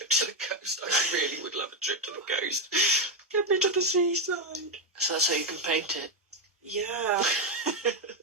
to the coast. I really would love a trip to the coast. Get me to the seaside. So that's how you can paint it. Yeah.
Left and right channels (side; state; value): both; normal; correlation 0.05